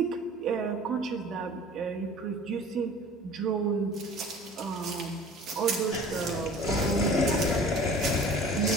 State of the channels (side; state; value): both; normal; correlation 0.45